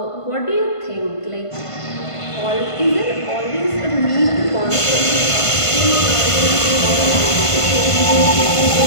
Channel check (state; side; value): late; right; 1.5 ms